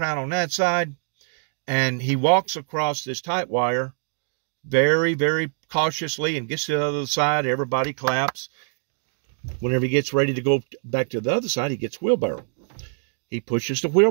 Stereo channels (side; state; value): left; silent; digital silence